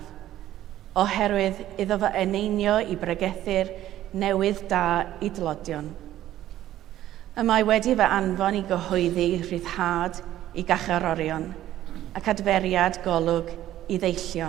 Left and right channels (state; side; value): quieter; left; 13.2 dB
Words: oherwydd iddo fo eneinio i bregethu'r newydd da i dlodion. Y mae wedi fe anfon i gyhoeddi rhyddhad i gacharorion ac adferiad golwg i